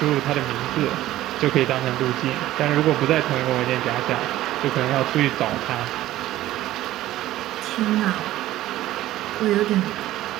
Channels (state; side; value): quieter; left; 14.9 dB